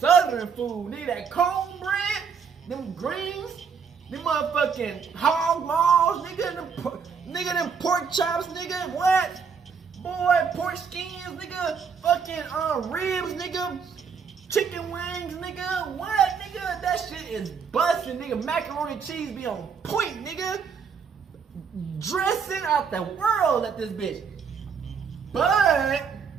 food. Nigga, that cornbread, them greens, them motherfucking hog maws, nigga, them pork chops, nigga, what? Boy, pork skins, nigga, fucking ribs, nigga, chicken wings, nigga, what, nigga? That shit is busting, nigga. Macaroni and cheese be on point, nigga. Dressing out the world at this bitch. But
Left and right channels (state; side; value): quieter; left; 6.2 dB